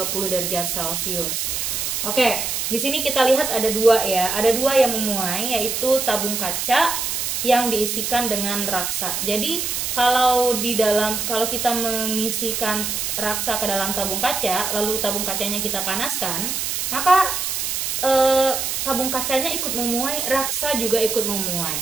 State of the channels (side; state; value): right; noise; hiss, 1 dB below the sound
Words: derajat Celcius? Oke, di sini kita lihat ada dua ya, ada dua yang memuai, yaitu tabung kaca yang diisikan dengan raksa. Jadi kalau kita mengisikan raksa ke dalam tabung kaca, lalu tabung kacanya kita panaskan, maka tabung kacanya ikut memuai, raksa juga ikut memuai,